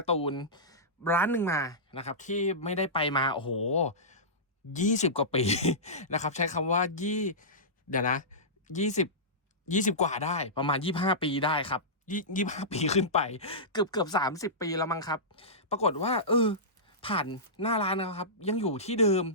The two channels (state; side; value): normal; both; correlation -0.17